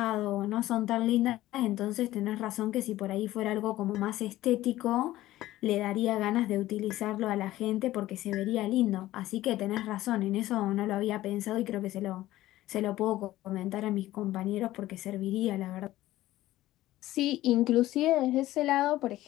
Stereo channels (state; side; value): quieter; right; 15.6 dB